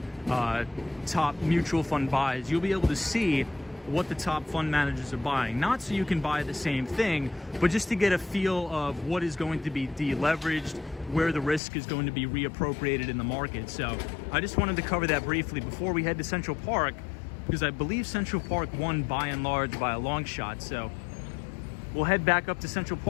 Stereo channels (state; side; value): drops out; right; at 11.6 s